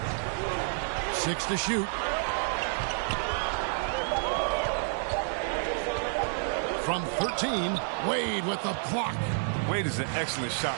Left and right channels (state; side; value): silent; left; 58 dB below the other